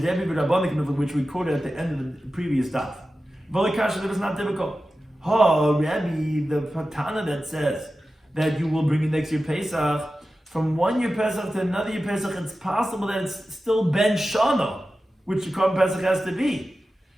Which we quoted at the end of the previous daf. That was not difficult. Rabbi, the patana that says that you will bring it next year Pesach, from one year Pesach to another year Pesach, it's possible that it's still Ben Shana, which the carbon Pesach has to be.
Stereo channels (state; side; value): normal; both; correlation 0.94